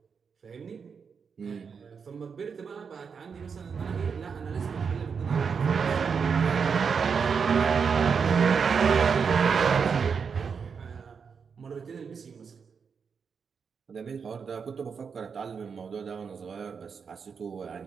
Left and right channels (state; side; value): quieter; left; 6.0 dB